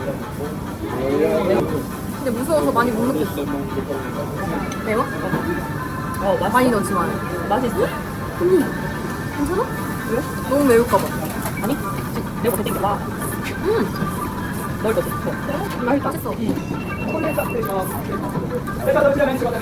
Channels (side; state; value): both; identical; correlation 1.00